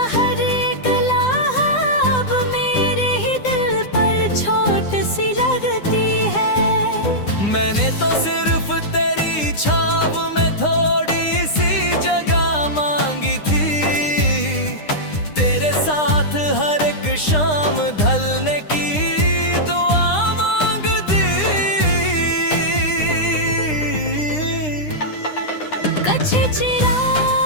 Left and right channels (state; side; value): late; right; 9.8 ms